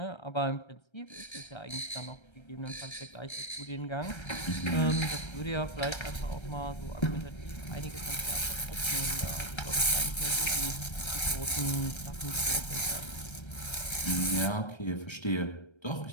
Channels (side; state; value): right; late; 1.3 ms